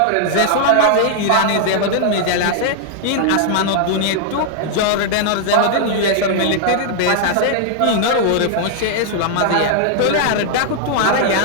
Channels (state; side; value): different; both; correlation 0.00